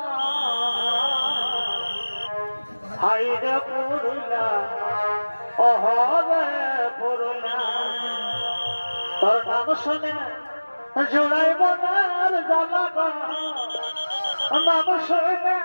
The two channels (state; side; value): inverted; both; correlation -1.00